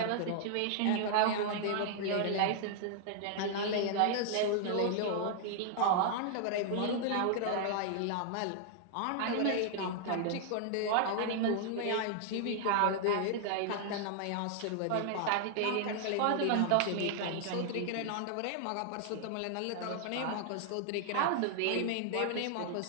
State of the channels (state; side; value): different; both; correlation -0.01